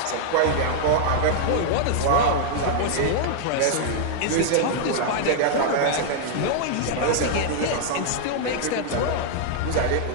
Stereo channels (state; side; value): different; both; correlation -0.01